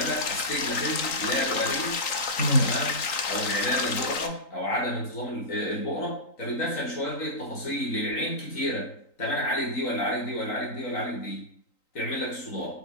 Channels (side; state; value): right; late; 3.8 ms